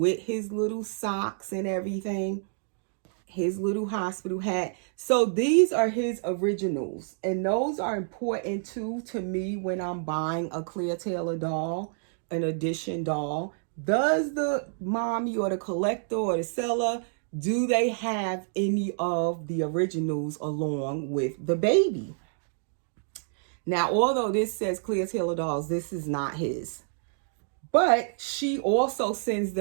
his little socks and everything, his little hospital hat. So these are his originals, and those are important too to me when I'm buying a Clear Taylor doll, an edition doll. Does the mommy or the collector or the seller, do they have any of the originals along with the baby? Now, although this says Clear Taylor dolls, this is not his. But she also sends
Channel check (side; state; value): left; silent; digital silence